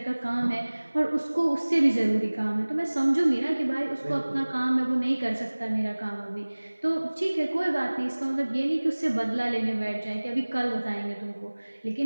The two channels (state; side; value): inverted; both; correlation -1.00